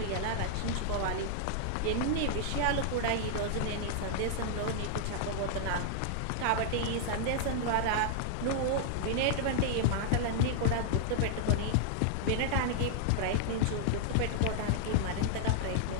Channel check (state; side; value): different; both; correlation -0.01